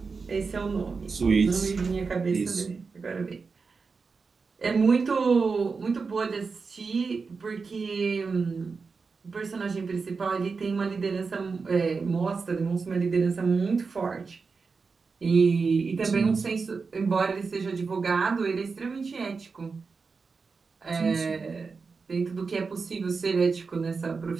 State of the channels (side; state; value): left; quieter; 4.8 dB